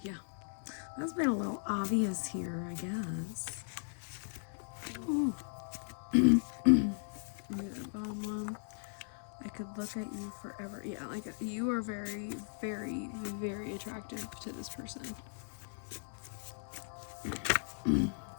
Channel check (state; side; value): silent; right; 53 dB below the other